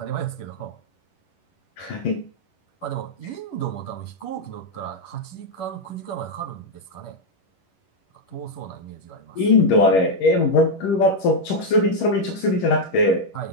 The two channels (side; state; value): right; late; 11 ms